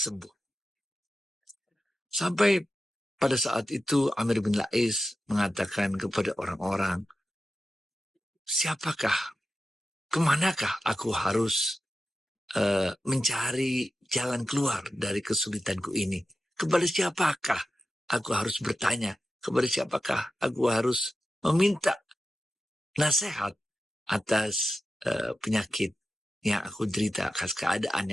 Sampai pada saat itu Amr bin La'is mengatakan kepada orang-orang, siapakah, kemanakah aku harus mencari jalan keluar dari kesulitanku ini? Kepada siapakah aku harus bertanya? Kepada siapakah aku harus meminta nasihat atas penyakit yang aku derita, atas keadaan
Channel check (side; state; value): both; normal; correlation 0.91